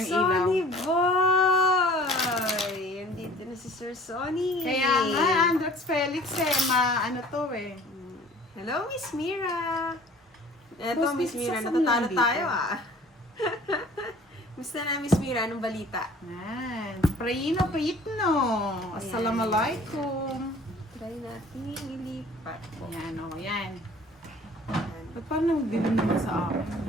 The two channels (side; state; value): both; normal; correlation 0.49